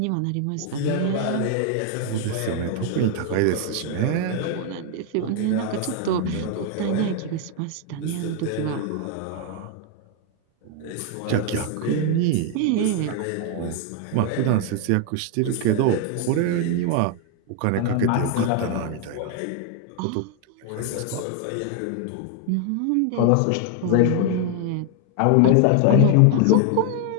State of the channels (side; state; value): both; different; correlation 0.01